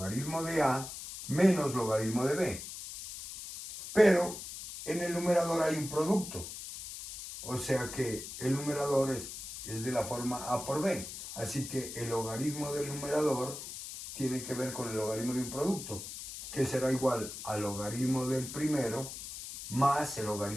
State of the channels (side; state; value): left; noise; hiss, 10 dB below the sound